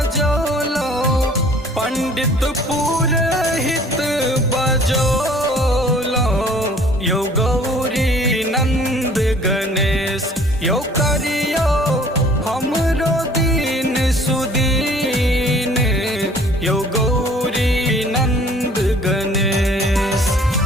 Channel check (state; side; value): normal; both; correlation 0.54